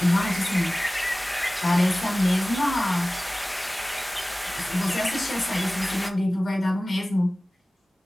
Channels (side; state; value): both; normal; correlation 0.98